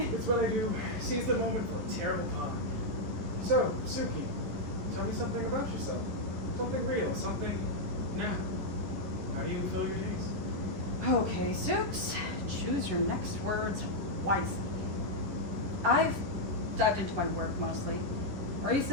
It's what I do. Seize the moment for a terrible pun. So, Suki, tell me something about yourself. Something real, something now. How do you fill your days? Okay, Soups, choose your next words wisely. I've dived into my work mostly.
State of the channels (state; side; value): late; left; 11 ms